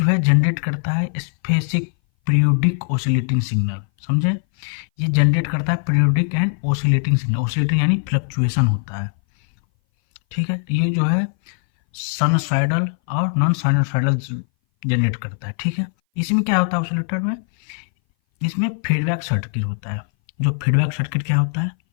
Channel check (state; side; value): silent; right; 60 dB below the other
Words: है जनरेट करता है स्पेसिफिक पीरियोडिक ओसिलेटिंग सिग्नल। समझे? ये जनरेट करता है periodic and oscillating signal. Oscillating यानी फ्लक्चुएशन होता है। ठीक है। ये जो है साइनसॉइडल और नॉन साइनसॉइडल जनरेट करता है। ठीक है। इसमें क्या होता है ओसिलेटर में? इसमें फीडबैक सर्किट होता है। जो फीडबैक सर्किट क्या होता है?